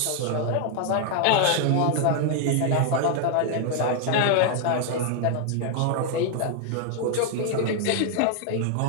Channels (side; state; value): both; different; correlation 0.00